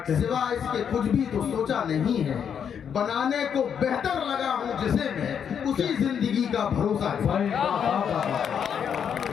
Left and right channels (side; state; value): right; quieter; 7.8 dB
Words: सिवा इसके कुछ भी तो सोचा नहीं है। बनाने को बेहतर लगा हूँ जिसे मैं, उसी जिंदगी का भरोसा है।